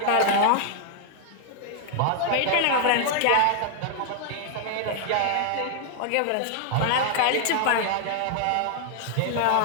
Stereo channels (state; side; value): different; both; correlation 0.00